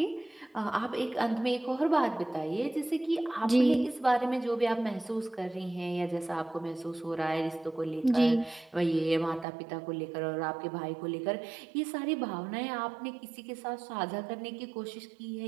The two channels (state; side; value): drops out; left; at 9.5 s